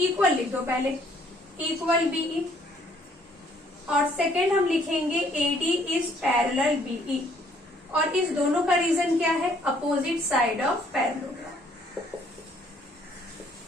लिख दो पहले, इक्वल BE। और सेकेंड हम लिखेंगे AD इज पैरेलल BE। और इस दोनों का रीजन क्या है, opposite side of parallelogram.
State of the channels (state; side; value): normal; both; correlation 0.64